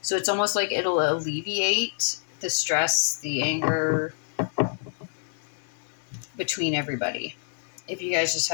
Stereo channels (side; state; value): right; silent; digital silence